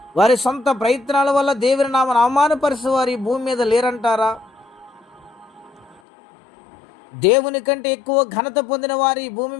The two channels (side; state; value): right; drops out; at 6.0 s